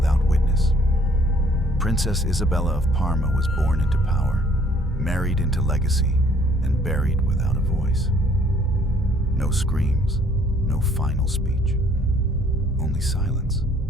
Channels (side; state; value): both; normal; correlation 0.61